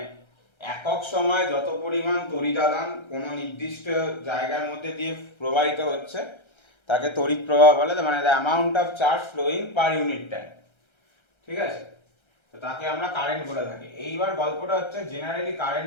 একক সময় যত পরিমাণ তড়িদাদান কোনো নির্দিষ্ট জায়গার মধ্যে দিয়ে প্রবাহিত হচ্ছে তাকে তড়িৎ প্রবাহ বলে, মানে the amount of charge flowing per unit time. ঠিক আছে, তো তাকে আমরা কারেন্ট বলে থাকি। এইবার গল্পটা হচ্ছে জেনারেলি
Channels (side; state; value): right; late; 1.3 ms